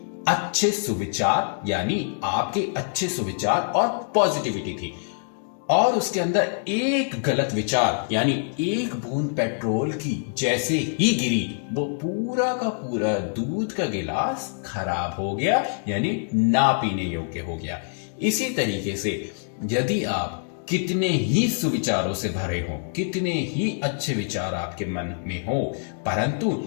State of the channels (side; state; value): right; silent; digital silence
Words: अच्छे सुविचार, यानी आपके अच्छे सुविचार और पॉजिटिविटी थी, और उसके अंदर एक गलत विचार यानी एक बूंद पेट्रोल की जैसे ही गिरी, वो पूरा का पूरा दूध का गिलास खराब हो गया, यानी ना पीने योग्य हो गया। इसी तरीके से यदि आप कितने ही सुविचारों से भरे हो, कितने ही अच्छे विचार आपके मन में हो, परंतु